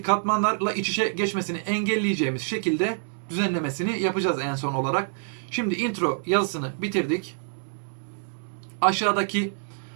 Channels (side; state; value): left; silent; 60 dB below the other